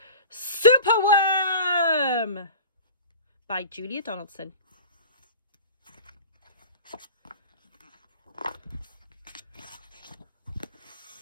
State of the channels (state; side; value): inverted; both; correlation -0.38